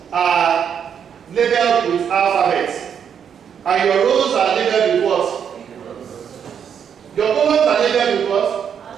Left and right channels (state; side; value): quieter; left; 7.9 dB